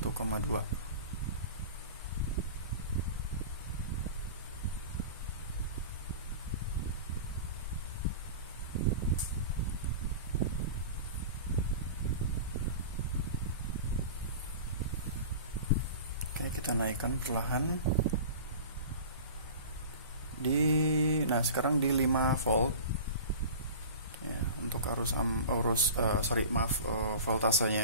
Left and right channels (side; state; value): both; inverted; correlation -0.36